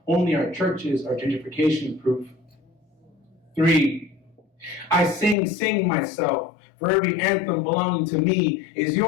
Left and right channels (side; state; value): right; drops out; at 5.4 s